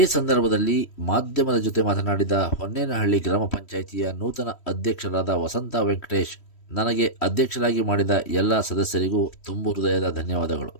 ಸಂದರ್ಭದಲ್ಲಿ ಮಾಧ್ಯಮದ ಜೊತೆ ಮಾತನಾಡಿದ ಹೊನ್ನೇನಹಳ್ಳಿ ಗ್ರಾಮ ಪಂಚಾಯಿತಿಯ ನೂತನ ಅಧ್ಯಕ್ಷರಾದ ವಸಂತ ವೆಂಕಟೇಶ್, ನನಗೆ ಅಧ್ಯಕ್ಷರಾಗಿ ಮಾಡಿದ ಎಲ್ಲ ಸದಸ್ಯರಿಗೂ ತುಂಬು ಹೃದಯದ ಧನ್ಯವಾದಗಳು.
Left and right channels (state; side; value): late; right; 3.1 ms